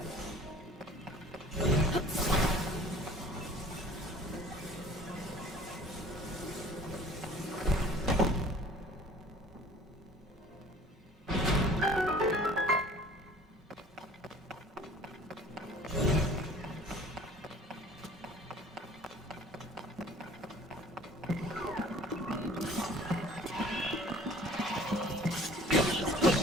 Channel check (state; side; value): normal; both; correlation 0.49